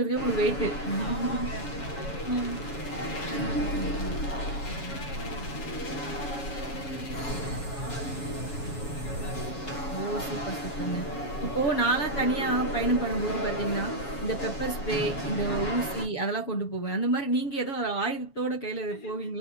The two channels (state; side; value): late; right; 7.1 ms